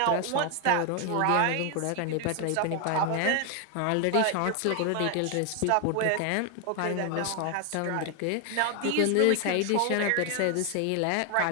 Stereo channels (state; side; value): different; both; correlation 0.00